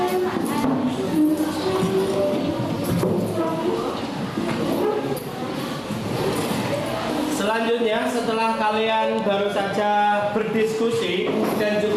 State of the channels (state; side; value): identical; both; correlation 1.00